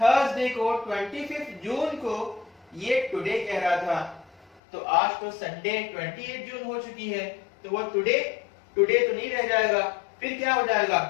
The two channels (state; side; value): drops out; right; at 4.6 s